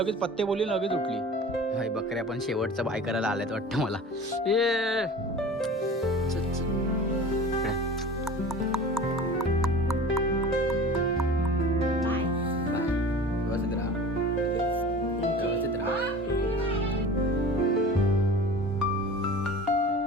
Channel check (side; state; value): both; normal; correlation 0.39